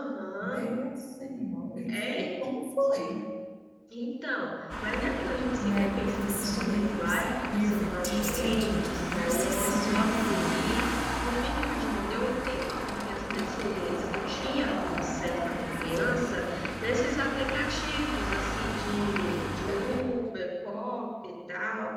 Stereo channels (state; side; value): identical; both; correlation 1.00